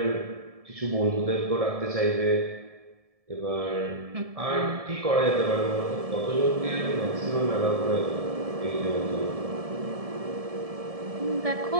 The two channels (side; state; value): left; late; 1.7 ms